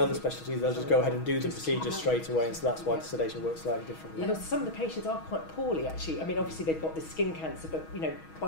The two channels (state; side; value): late; right; 6.3 ms